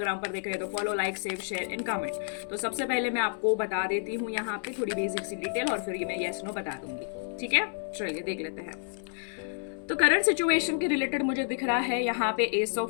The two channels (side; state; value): right; silent; 58 dB below the other